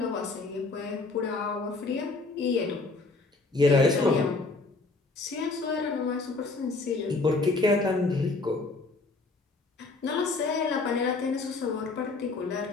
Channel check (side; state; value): right; quieter; 3.7 dB